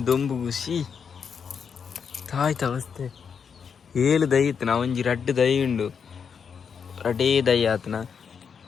దొంಬು ಖುಷಿ ತಾಯ್ತ ಅವಸ್ಥೆ ಏಳು ದೈ ಇತ್ತು ನಾ ಒಂಜಿ ರಡ್ಡು ದೈ ಉಂಡು ರಡೇ ದೈ ಆತನ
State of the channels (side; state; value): right; quieter; 6.6 dB